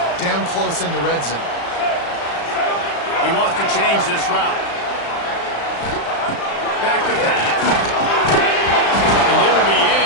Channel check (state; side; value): late; right; 35 ms